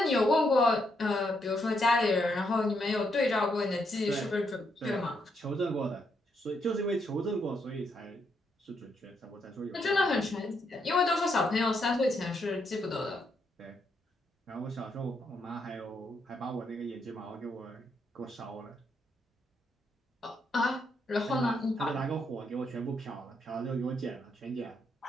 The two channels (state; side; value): normal; both; correlation 0.77